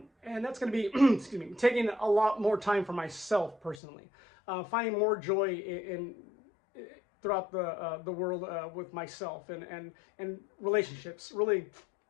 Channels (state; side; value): drops out; right; at 3.8 s